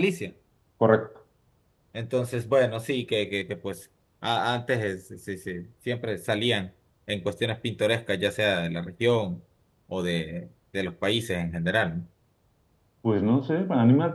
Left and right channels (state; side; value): identical; both; correlation 1.00